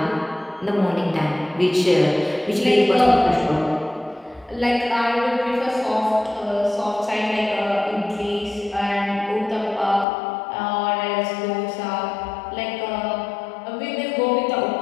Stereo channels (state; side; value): drops out; right; at 10.1 s